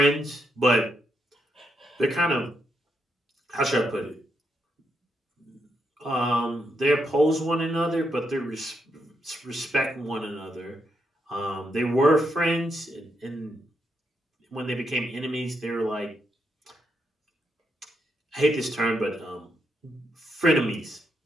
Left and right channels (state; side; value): normal; both; correlation 0.80